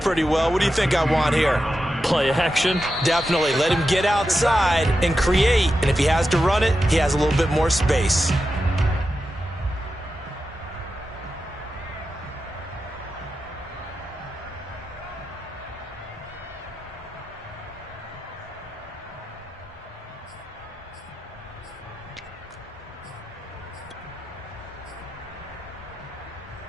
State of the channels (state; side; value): normal; both; correlation 0.90